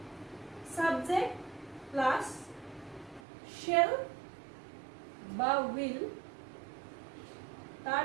subject plus shall বা will তাৰ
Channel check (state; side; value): drops out; left; at 3.2 s